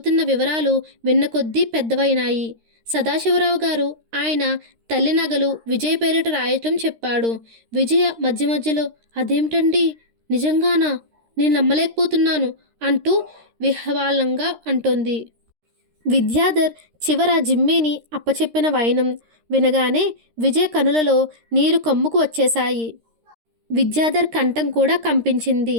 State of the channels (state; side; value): late; left; 13 ms